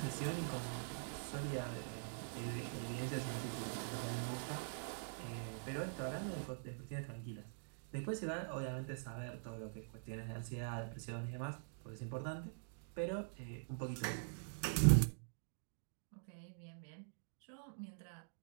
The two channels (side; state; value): left; silent; digital silence